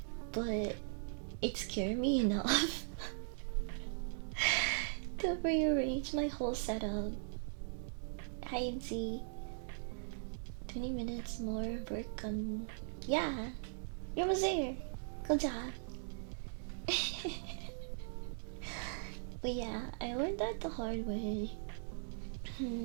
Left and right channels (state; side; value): silent; left; digital silence